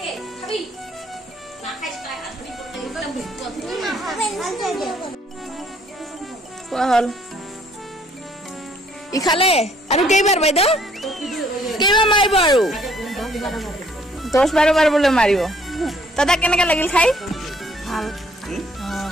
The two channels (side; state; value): both; normal; correlation 0.63